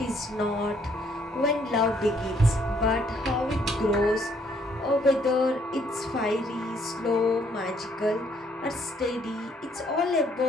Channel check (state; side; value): normal; both; correlation 0.67